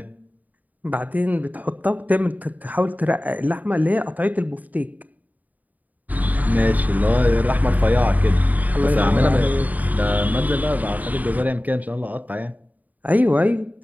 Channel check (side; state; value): left; late; 0.078 ms